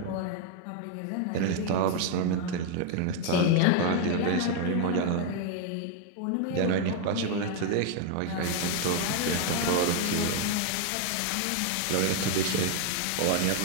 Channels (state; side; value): different; both; correlation 0.01